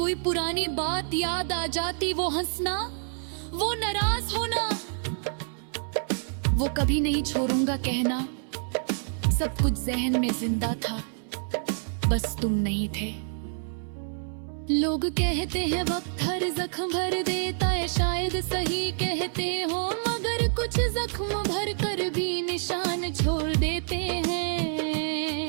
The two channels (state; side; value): silent; left; 60 dB below the other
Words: पुरानी बात याद आ जाती। वो हंसना, वो नाराज होना, वो कभी नहीं छोड़ूंगा कहना, सब कुछ जहन में जिंदा था, बस तुम नहीं थे। लोग कहते हैं वक्त हर जख्म भर देता है, शायद सही कहते हो, मगर कुछ जख्म भर कर भी निशान छोड़ देते